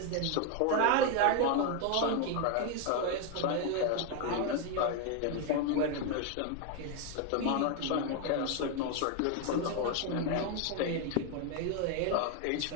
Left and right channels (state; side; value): different; both; correlation 0.01